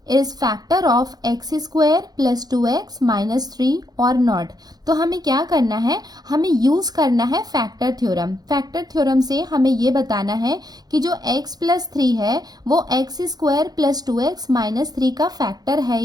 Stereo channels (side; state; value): left; late; 0.19 ms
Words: is factor of x square plus 2x minus 3 और नॉट। तो हमें क्या करना है, हमें यूज करना है फैक्टर थ्योरम। फैक्टर थ्योरम से हमें ये बताना है कि जो x प्लस 3 है वो x square plus 2x minus 3 का फैक्टर है